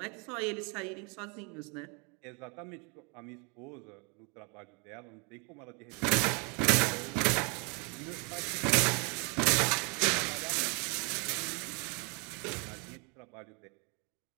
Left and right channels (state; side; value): quieter; left; 32.8 dB